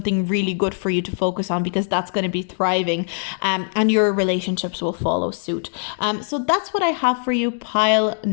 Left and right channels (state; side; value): silent; right; digital silence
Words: really good for you to focus on, because that's going to be thriving, and your relationships will follow suit. So that's what I have for you, pile